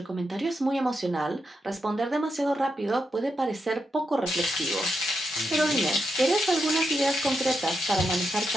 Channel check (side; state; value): both; normal; correlation 0.84